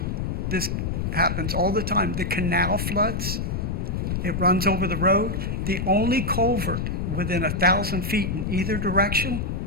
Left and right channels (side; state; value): left; noise; rumble, 1 dB below the sound